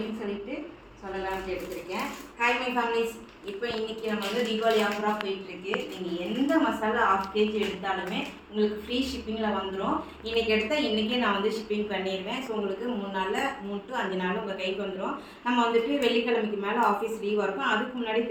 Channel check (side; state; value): both; identical; correlation 1.00